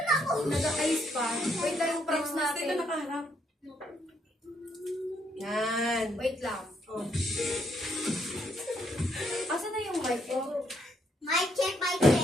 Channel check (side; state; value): both; normal; correlation 0.73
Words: Nag-ayos pa. Wait lang yung props Dito natin. nakaharap. Yan. Wait lang. Oh. Asan na yung mic ko? Mic check, mic